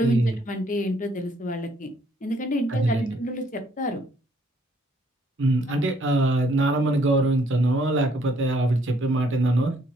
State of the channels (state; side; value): normal; both; correlation 0.66